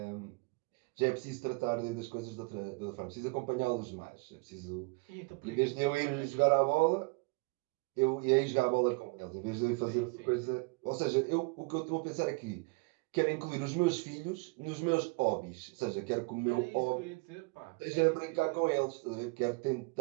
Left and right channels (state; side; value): quieter; left; 28.6 dB